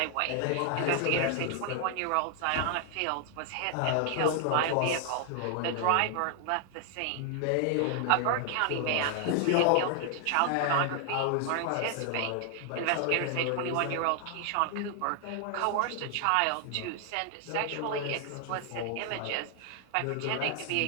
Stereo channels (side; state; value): both; different; correlation 0.00